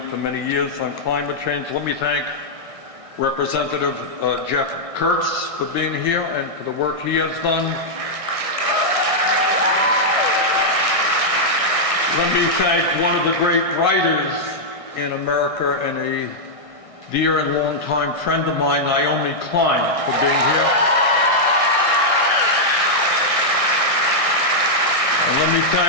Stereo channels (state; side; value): late; left; 1.6 ms